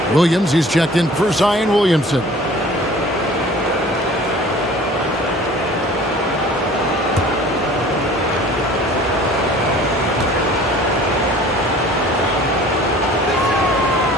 Williams, he's checked in for Zion Williamson.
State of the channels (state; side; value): normal; both; correlation 0.47